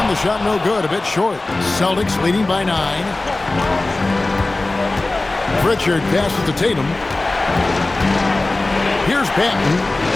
the shot no good, a bit short. Celtics leading by 9. Pritchard passes to Tatum. Here's Banton.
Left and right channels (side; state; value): right; quieter; 3.0 dB